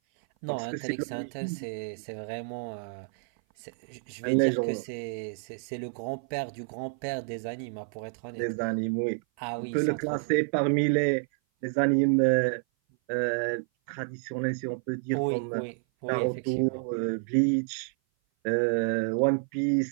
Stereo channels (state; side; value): silent; left; 56 dB below the other